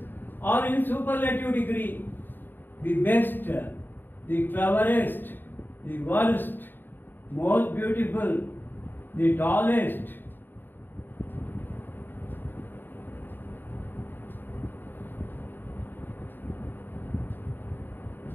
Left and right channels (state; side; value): late; right; 0.093 ms